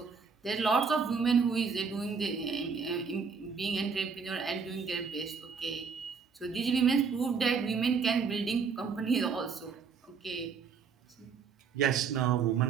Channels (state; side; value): quieter; left; 5.6 dB